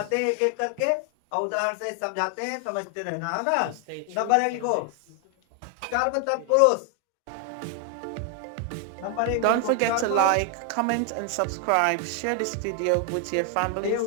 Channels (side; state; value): both; different; correlation 0.00